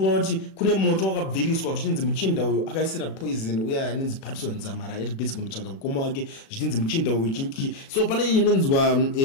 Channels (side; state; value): right; late; 36 ms